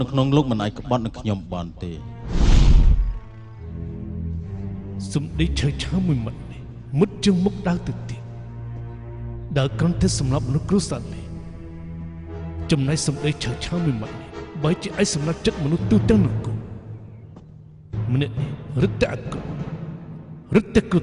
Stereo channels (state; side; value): identical; both; correlation 1.00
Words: នៅក្នុងលោកមិនអាចក្បត់នឹងខ្ញុំបានទេសំដីឆៃមួយម៉ាត់នេះមុតជាងមុខដើរទៅទៀតដើរគ្រាន់តែសម្រាប់មនុស្សគ្រួសារនេះ ចំណែកសម្ដីឆើឆាមួយម៉ាត់នេះបើជាឯសម្រាប់ចិត្តមនុស្សទូទាំងនគរម្នាក់នេះរឹតតែអាក្រក់រឹតតែគ្រោះ